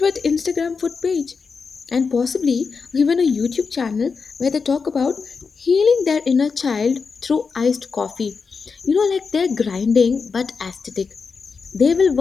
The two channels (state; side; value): quieter; right; 5.2 dB